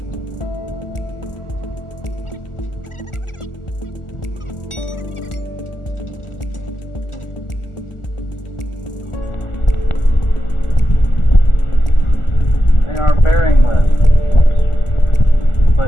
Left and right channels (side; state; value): right; late; 1.4 ms